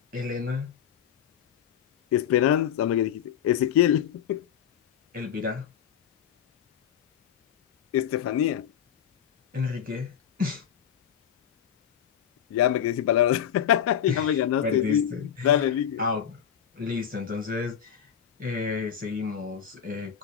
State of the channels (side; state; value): right; quieter; 9.1 dB